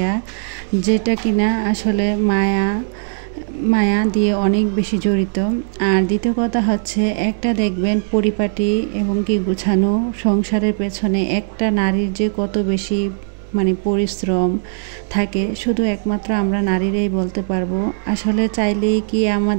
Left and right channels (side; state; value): left; silent; digital silence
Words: যেটা কিনা আসলে মায়া দিয়ে অনেক বেশি জড়িত। আর দ্বিতীয় কথা হচ্ছে, একটা দেখবেন পরিপাটি এবং কি গুছানো সংসারের পেছনে একটা নারীর যে কত বেশি পরিশ্রম থাকে, শুধু একমাত্র আমরা নারীরাই বলতে পারবো। আসলে চাইলেই কি